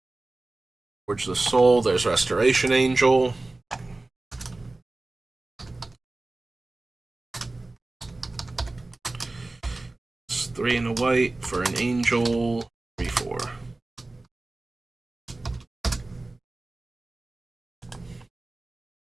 Forge the Soul. There's Restoration Angel. It's 3 and a white for an angel. 3/4.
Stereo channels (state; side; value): quieter; left; 3.0 dB